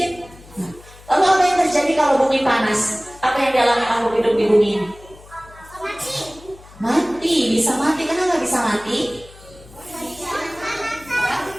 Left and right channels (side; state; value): left; noise; hum, 22 dB below the sound